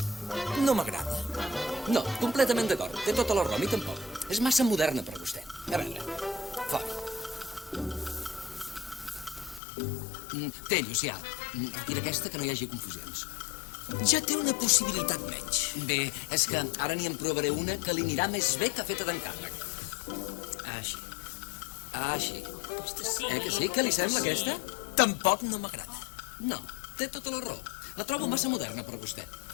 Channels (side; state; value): right; drops out; at 9.6 s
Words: No m'agrada. No, completament d'acord. Té tota la raó, a mi tampoc. És massa moderna per vostè. A veure, fora. Té, Llucià, retira aquesta, que no hi hagi confusions. Ja té una possibilitat menys. Bé, és que ara n'hi en provaré una que li anirà més bé que feta d'encàrrec. Així. Així. Aquesta sí. Que sí? Què li sembla, aquesta? Tampoc no m'agrada. No, té tota la raó. La trobo massa moderna per vostè.